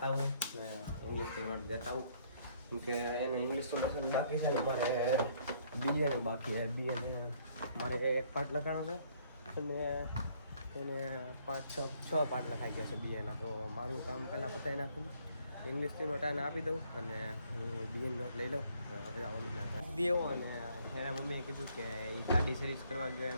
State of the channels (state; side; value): inverted; both; correlation -0.64